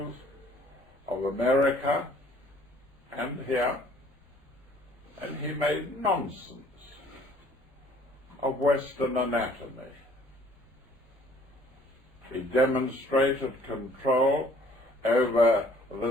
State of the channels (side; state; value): both; normal; correlation 0.57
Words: of America and here, and he made nonsense of Western anatomy. He demonstrated control over